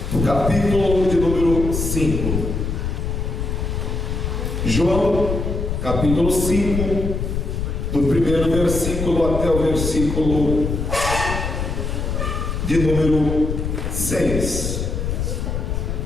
no capítulo de número 5. João, capítulo 5, do primeiro versículo até o versículo de número 6.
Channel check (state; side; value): noise; left; rumble, 2 dB below the sound